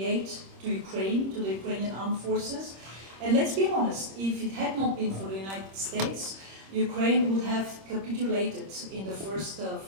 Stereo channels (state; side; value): late; left; 26 ms